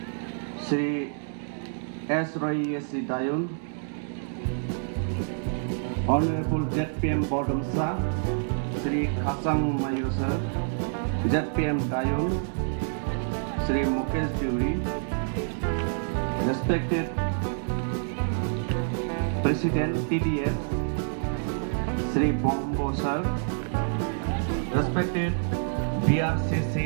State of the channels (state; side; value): silent; left; digital silence